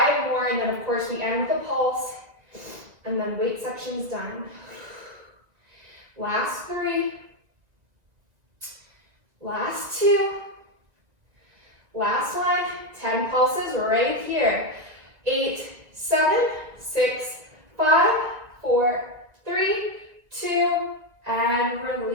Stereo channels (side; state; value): left; late; 1.9 ms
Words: more, and then of course we end with a pulse, and then weight section's done. Last 3, last 2, last 1, 10 pulses right here. 8, 7, 6, 5, 4, 3, 2, and